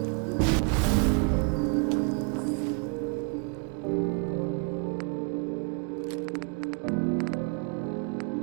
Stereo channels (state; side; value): quieter; left; 37.0 dB